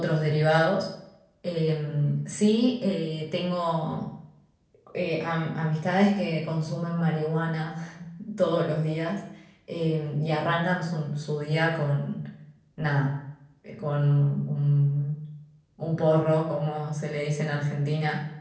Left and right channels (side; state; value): both; identical; correlation 1.00